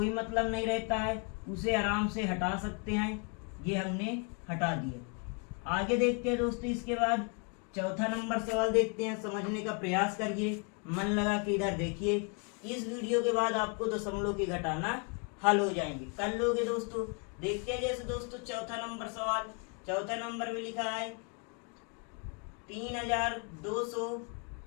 मतलब नहीं रहता है, उसे आराम से हटा सकते हैं। ये हमने हटा दिया। आगे देखते हैं दोस्तों, इसके बाद चौथा नंबर सवाल देखते हैं। समझने का प्रयास करिए, मन लगा के इधर देखिए। इस वीडियो के बाद आपको दशमलव के घटाना हल हो जाएंगे, कर लोगे दोस्तों। देखते हैं जैसे दोस्तों चौथा नंबर सवाल, चौथा नंबर में लिखा है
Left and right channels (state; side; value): quieter; right; 37.4 dB